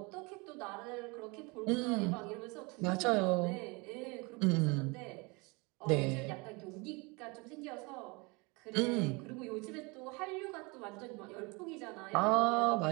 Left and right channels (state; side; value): quieter; left; 27.7 dB